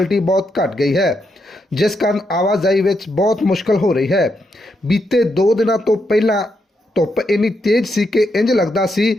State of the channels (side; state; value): both; normal; correlation 0.81